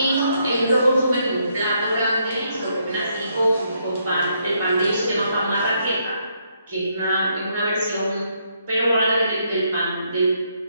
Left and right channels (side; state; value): both; inverted; correlation -0.75